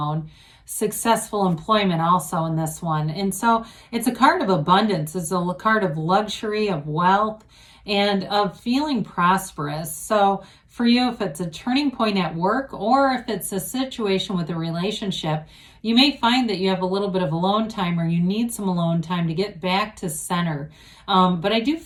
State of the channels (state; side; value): identical; both; correlation 1.00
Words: successful employment also in this one. And so it's a card of abundance. It's a card of luxury, of wealth, and of feeling prosperous. So for you, if it's a turning point at work, or if it's a situation with a relationship, you may find that you have a little bit of alone time, or you need some alone time to get back to center. But I do